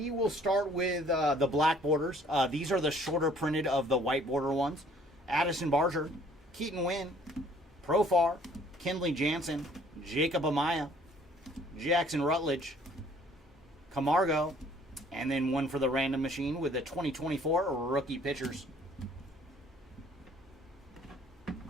will start with the black borders. These are the shorter printed of the white border ones. Addison Barger, Keaton Wynn, Profar, Kenley Jansen, Jacob Amaya, Jackson Rutledge, Camargo, and then one for the random machine with the 2024 rookie pitchers.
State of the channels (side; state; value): both; normal; correlation 0.57